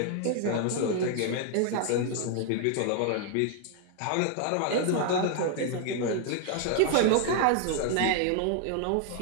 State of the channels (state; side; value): different; both; correlation 0.00